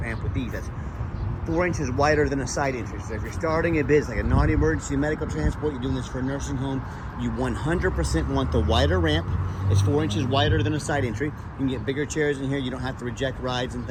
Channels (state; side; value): identical; both; correlation 1.00